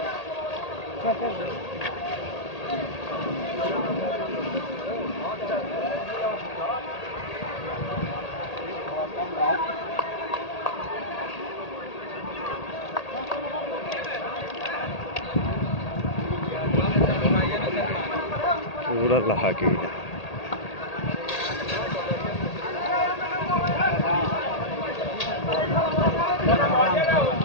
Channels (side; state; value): right; late; 1.8 ms